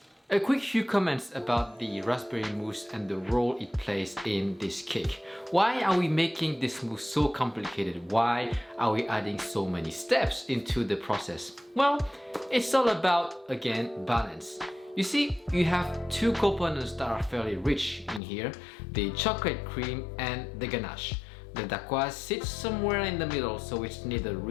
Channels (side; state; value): right; drops out; at 18.2 s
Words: A quick few comments about the raspberry mousse and the role it plays in this cake. Why are we making this mousse so complicated? Why are we adding so many steps into the process? Well, it's all about, again, balance. You see, you have two components that are fairly rich in here, the chocolate cream and the ganache. The Dacquoise sits somewhere in the middle, so it's neither